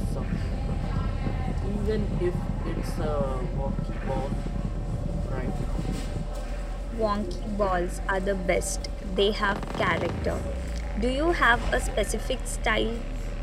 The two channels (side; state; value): both; identical; correlation 1.00